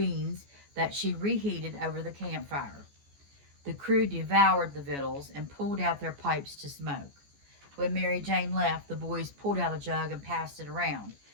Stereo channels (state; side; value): late; left; 14 ms